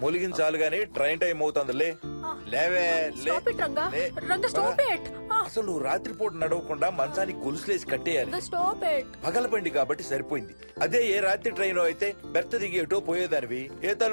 మొలిగిన చాలు గానీ ట్రైన్ టైం అవుతుంది. లేవే లే. Stop it, Ranga. లే. Ranga, stop it. అసలు నువ్వు రాత్రిపూట నడవకుండా మంచానికి గొలుసులేసి కట్టేయాలి. Stop it. పగలబండి కాబట్టి సరిపోయింది. అదే ఏ రాత్రి ట్రైన్ అయితే బెర్త దిగి ఎటో పోయేదానివి. ఏ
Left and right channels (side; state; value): both; inverted; correlation -1.00